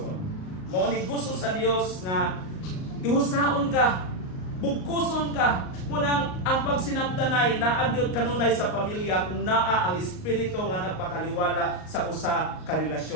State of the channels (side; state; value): right; late; 38 ms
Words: Mao ni gusto sa Dios nga ihusaon ka, bugkuson ka. Munang ang pagsinabtanay na agyod kanunay sa pamilya kung naa ang espiritu nga nagpataliwala sa usa ka